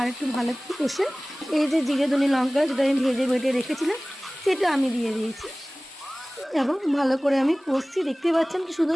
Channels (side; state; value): both; normal; correlation 0.98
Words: একটু ভালো করে কষে এই যে জিরে ধনে লঙ্কা যেটা আমি ভেজে বেটে রেখেছিলাম সেটা আমি দিয়ে দিয়েছি এবং ভালো করে আমি কষছি। দেখতে পাচ্ছেন কি শুধু